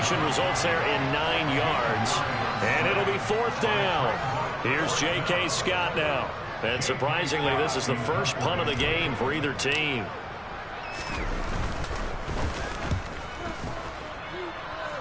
results there in 9 yards, and it'll be 4th down. Here's J.K. Scott now. And surprisingly, this is the first punt of the game for either team.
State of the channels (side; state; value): both; identical; correlation 1.00